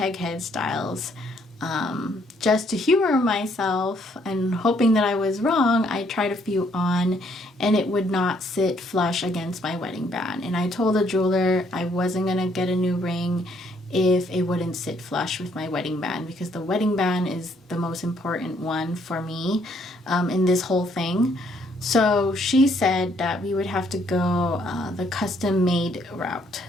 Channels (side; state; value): both; normal; correlation 0.68